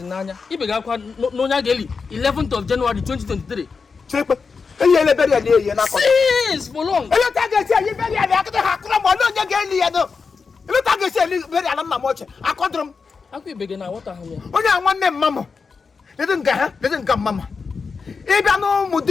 in Nanya. He began Nonya Geli, 11th of January 2023. Check it. Yes, for long. Look at the very I caught them. Okay, begin now. What are you? Only one name, Mamma. Didn't come, Mamma. If I know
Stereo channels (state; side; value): quieter; right; 5.0 dB